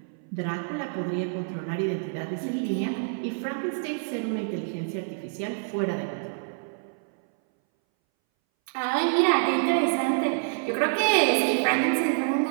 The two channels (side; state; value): left; silent; 60 dB below the other